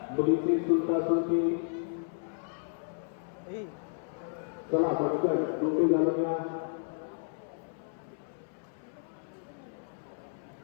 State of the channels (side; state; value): right; silent; 56 dB below the other